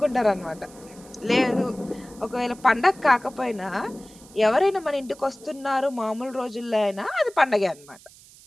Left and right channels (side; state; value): right; noise; hiss, 23 dB below the sound